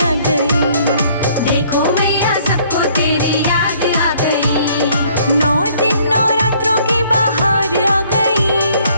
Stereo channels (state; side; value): inverted; both; correlation -0.61